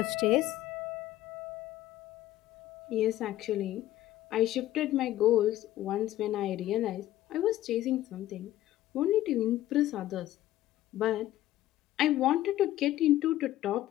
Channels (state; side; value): quieter; right; 14.3 dB